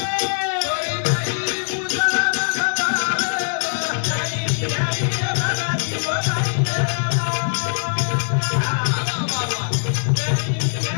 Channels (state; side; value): silent; right; digital silence